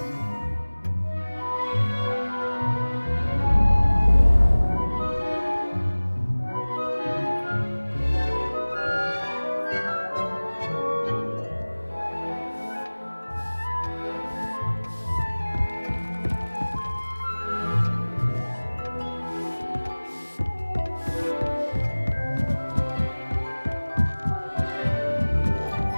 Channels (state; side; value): inverted; both; correlation -1.00